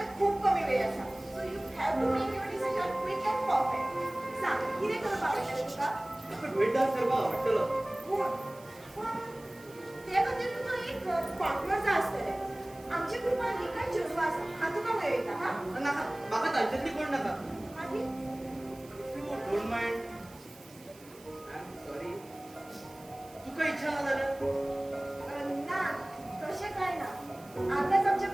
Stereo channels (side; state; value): right; noise; hiss, 23 dB below the sound